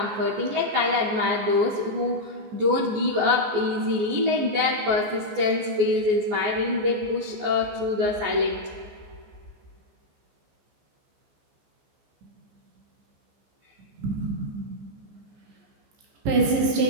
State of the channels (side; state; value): left; late; 15 ms